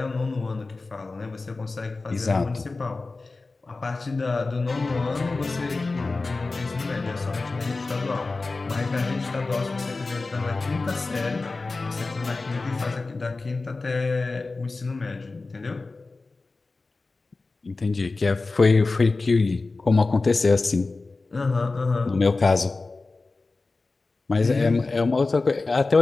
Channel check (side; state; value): right; quieter; 3.6 dB